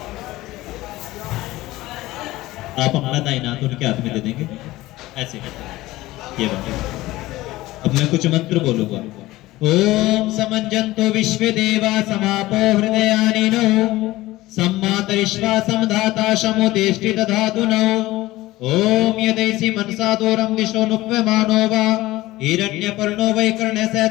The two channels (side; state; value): right; quieter; 17.8 dB